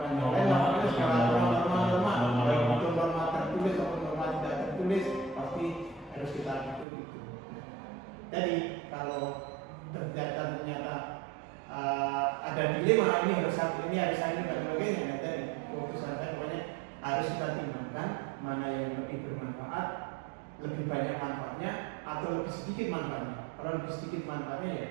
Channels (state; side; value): drops out; left; at 6.9 s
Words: yang lain, apalagi segala norma-norma, baik itu norma tertulis atau norma tidak tertulis, pasti harus kita ikuti itu. Jadi kalau ternyata ada dilema, ini harus ini dan sebagainya, nah tadi keputusan saya pokoknya harus kita timbangkan mana yang lebih bermanfaat, lebih banyak manfaatnya atau lebih sedikit manfaatnya. Kalau lebih sedikit manfaatnya ya